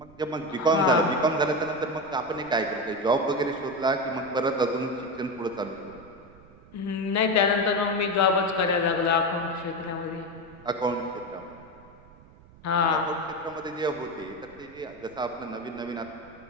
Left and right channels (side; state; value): right; noise; rumble, 23 dB below the sound